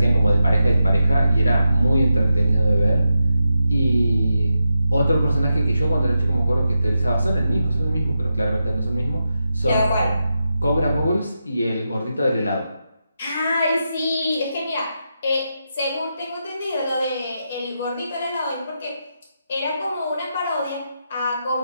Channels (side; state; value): both; inverted; correlation -0.87